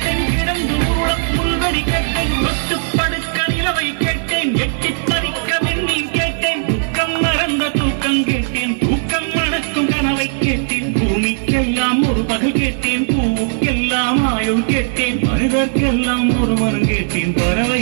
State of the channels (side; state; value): left; silent; digital silence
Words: கிடந்து உருளம் புல்வெளி கேட்டேன், தொட்டு படுக்க நிலவை கேட்டேன், எட்டி பறிக்க வெந்நீர் கேட்டேன், துக்கம் மறந்த தூக்கம் கேட்டேன், தூக்கம் மணக்கும் கனவை கேட்டேன், பூமிக்கெல்லாம் ஒரு பகல் கேட்டேன், பூவுக்கெல்லாம் ஆயுள் கேட்டேன், மனிதர்க்கெல்லாம் ஒரு மனம் கேட்டேன்,